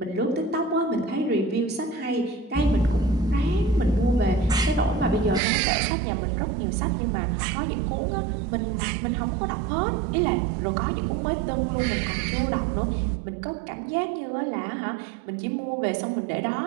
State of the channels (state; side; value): drops out; left; at 5.4 s